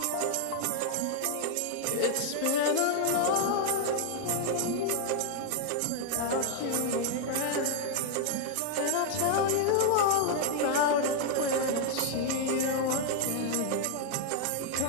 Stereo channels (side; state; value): both; different; correlation 0.00